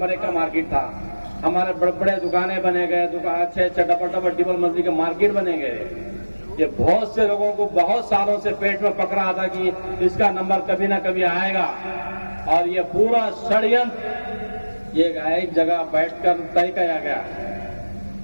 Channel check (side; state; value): both; inverted; correlation -1.00